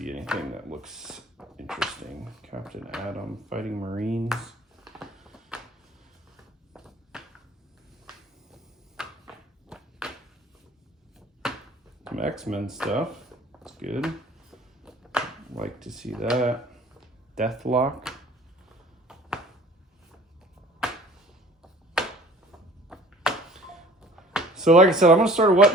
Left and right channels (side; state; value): both; normal; correlation 0.50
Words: anything that looks interesting. Captain Atom, Fighting Marines. Some X-Men stuff. That's good. Like to see that. Deathlock. So like I said, I'm going to start a